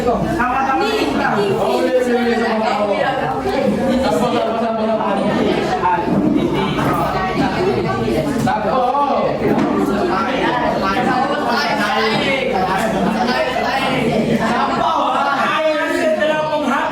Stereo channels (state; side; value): identical; both; correlation 1.00